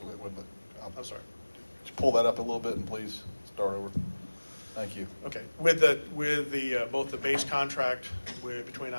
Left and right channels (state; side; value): inverted; both; correlation -1.00